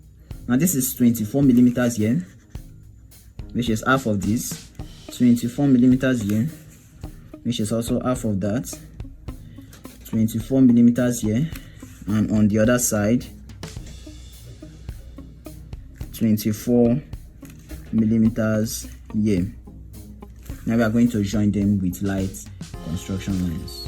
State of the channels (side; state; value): both; identical; correlation 1.00